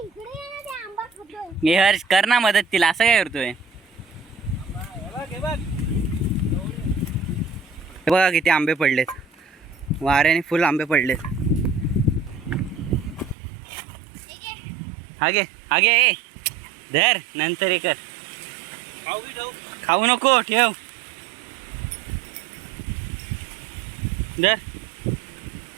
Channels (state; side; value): drops out; left; at 13.4 s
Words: हे हर्ष कर ना मदत तिला. असं काय करतोय? हे बघ. हे बघा किती आंबे पडलेत. वाऱ्याने फुल आंबे पडलेत. हागे ए धर, नंतर हे कर. खाऊ नको, ठेव. धर.